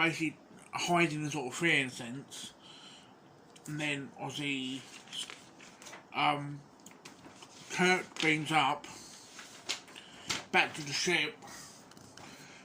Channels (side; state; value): both; identical; correlation 1.00